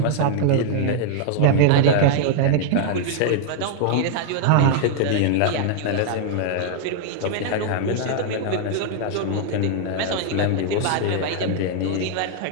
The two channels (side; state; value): both; different; correlation -0.01